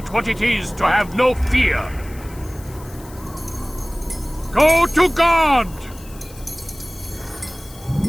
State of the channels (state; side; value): noise; left; hiss, 21 dB below the sound